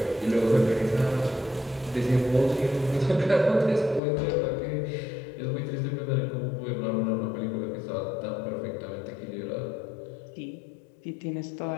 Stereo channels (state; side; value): drops out; right; at 4.0 s